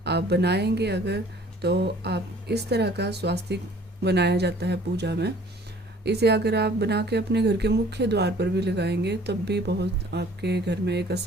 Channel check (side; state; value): both; normal; correlation 0.53